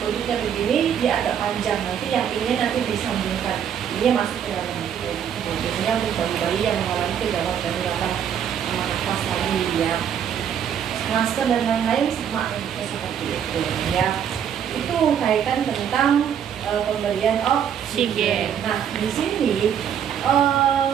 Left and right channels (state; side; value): quieter; left; 8.7 dB